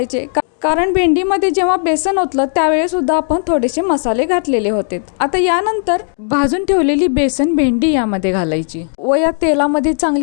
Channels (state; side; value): silent; right; 57 dB below the other